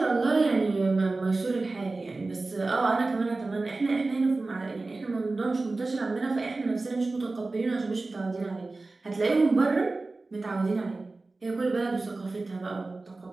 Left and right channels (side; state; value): left; quieter; 3.4 dB